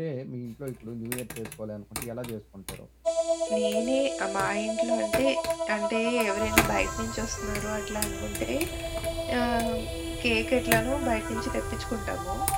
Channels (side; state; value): both; identical; correlation 1.00